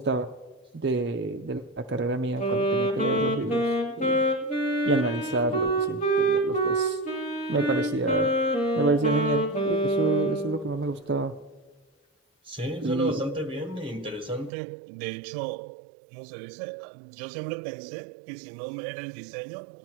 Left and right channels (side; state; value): left; drops out; at 14.5 s